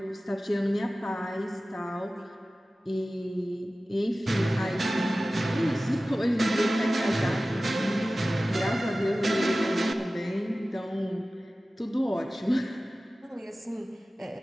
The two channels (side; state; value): both; normal; correlation 0.96